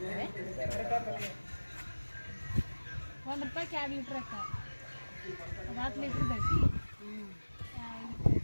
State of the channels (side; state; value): both; inverted; correlation -1.00